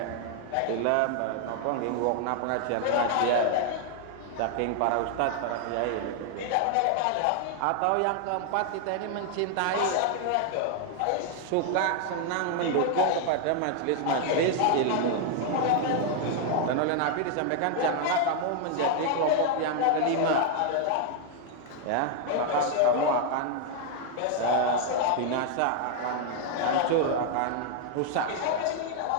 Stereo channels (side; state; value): both; different; correlation 0.00